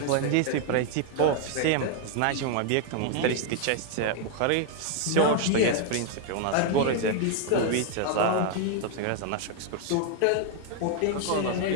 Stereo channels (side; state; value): both; different; correlation 0.00